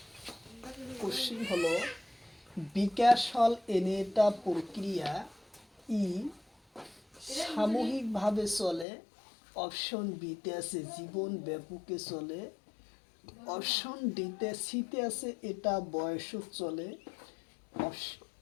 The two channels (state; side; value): drops out; right; at 8.8 s